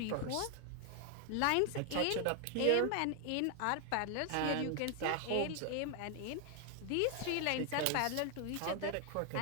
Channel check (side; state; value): both; different; correlation 0.00